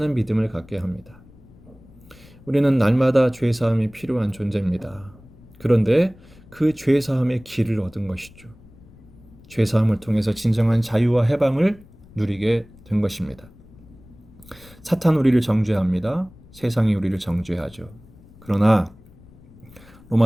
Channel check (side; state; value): left; noise; rumble, 24 dB below the sound